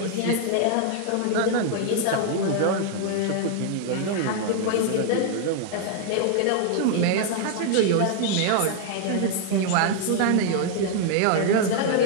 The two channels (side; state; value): both; different; correlation 0.00